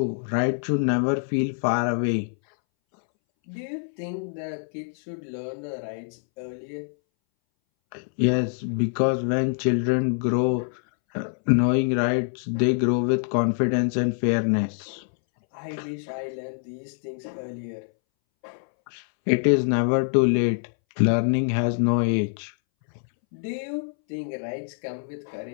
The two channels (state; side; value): silent; right; 62 dB below the other